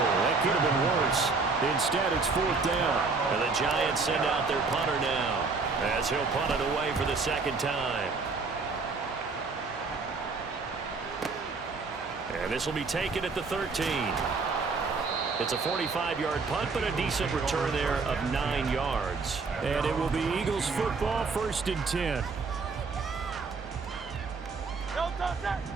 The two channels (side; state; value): left; quieter; 4.3 dB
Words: That could have been worse. Instead, it's 4th down. And the Giants send out their punter now as he'll punt it away for the 2nd time. And this will be taken at the 13. It's a 45-yard punt, but a decent return there of 9 yards. And it will be Eagles football, 1st and 10.